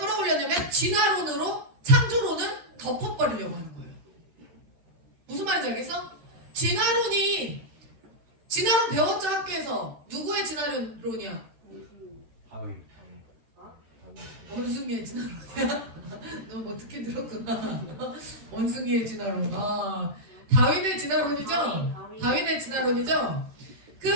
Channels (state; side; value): late; left; 13 ms